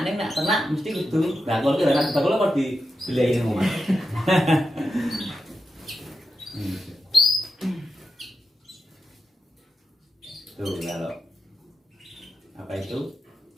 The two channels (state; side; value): normal; both; correlation 0.89